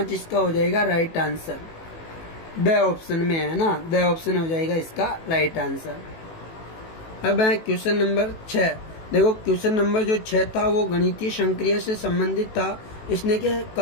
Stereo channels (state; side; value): late; right; 18 ms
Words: इसका हो जाएगा राइट आंसर। द ऑप्शन में है ना, द ऑप्शन हो जाएगा इसका राइट आंसर। अब है क्वेश्चन नंबर 6। देखो क्वेश्चन नंबर जो 6 था वो गणितीय संक्रिया से संबंधित था। इसने क्या